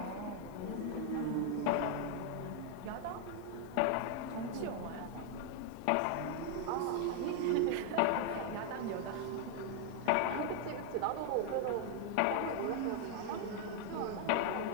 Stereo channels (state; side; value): different; both; correlation 0.00